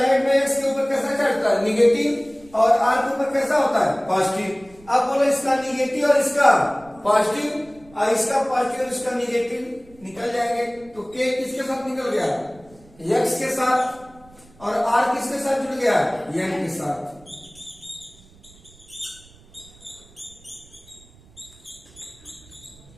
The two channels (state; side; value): noise; right; rumble, 25 dB below the sound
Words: में इसके ऊपर कैसा चढ़ता है, निगेटिव, और आर के ऊपर कैसा होता है, पॉजिटिव। अब बोलो इसका निगेटिव और इसका पॉजिटिव, और इसका पॉजिटिव और इसका निगेटिव निकल जाएंगे। तो के किसके साथ निकल गया, एक्स के साथ, और आर किसके साथ जुड़ गया, एन के साथ।